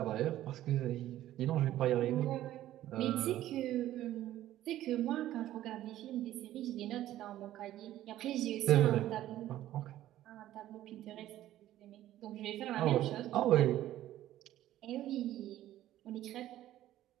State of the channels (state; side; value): quieter; left; 13.6 dB